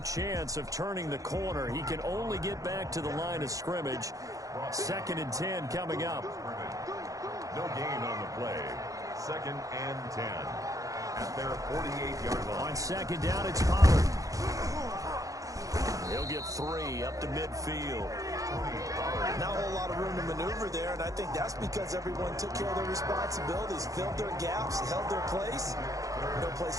chance of turning the corner. He can only get back to the line of scrimmage. 2nd and 10 coming up. No gain on the play. 2nd and 10. At their 48-yard line. On second down, it's Pollard. He'll get 3 up to midfield. Not a whole lot of room to maneuver there, and I think that's because everyone took care of their responsibilities, filled their gaps, held their place. No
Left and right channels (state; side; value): late; left; 0.16 ms